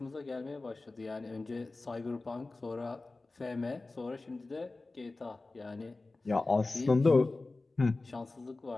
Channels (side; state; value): right; quieter; 3.3 dB